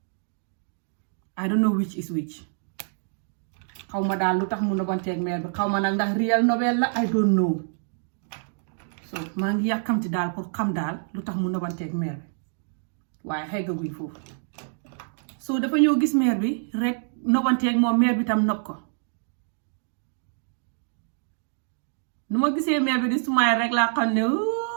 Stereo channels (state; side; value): silent; left; digital silence